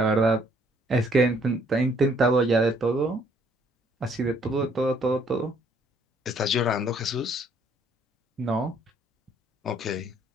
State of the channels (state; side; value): normal; both; correlation 0.64